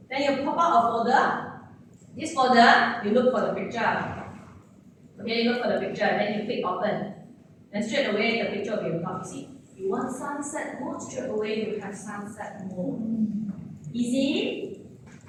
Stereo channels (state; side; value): identical; both; correlation 1.00